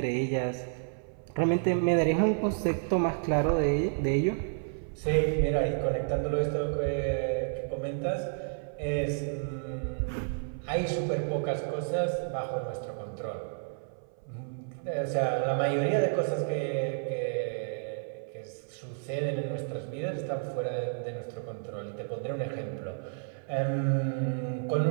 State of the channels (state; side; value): silent; left; 57 dB below the other